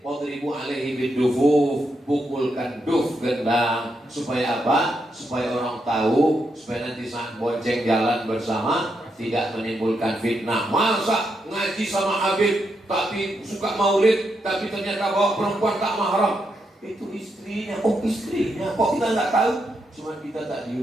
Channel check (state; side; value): normal; both; correlation 0.82